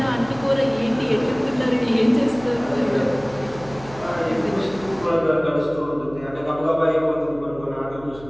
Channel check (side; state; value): right; noise; hum, 19 dB below the sound